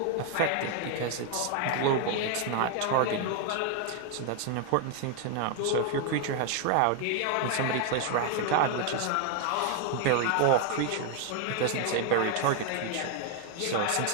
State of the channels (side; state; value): both; different; correlation 0.00